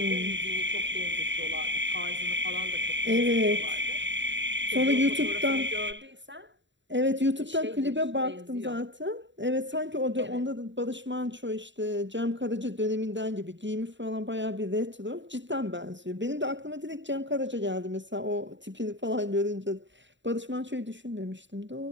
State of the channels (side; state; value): left; late; 0.54 ms